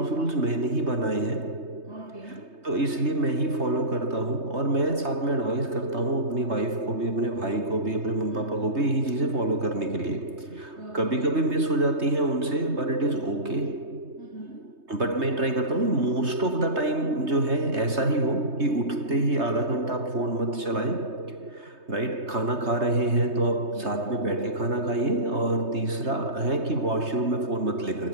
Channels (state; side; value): late; left; 3.2 ms